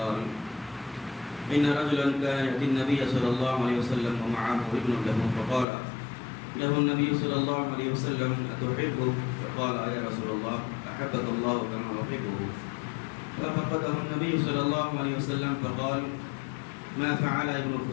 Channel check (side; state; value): right; drops out; at 5.7 s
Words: إن رجلا كان يأتي النبي صلى الله عليه وسلم ومعه ابن له، فقال له النبي صلى الله عليه وسلم: أتحبه؟ فقال: يا رسول الله، أحبك الله كما أحبه. ففقده النبي صلى الله عليه وسلم فقال: ما فعل ابن